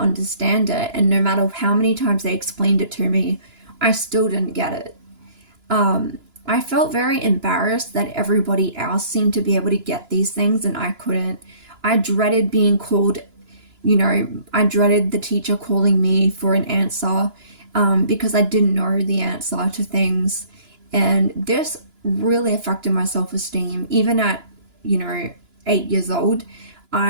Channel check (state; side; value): late; left; 2.9 ms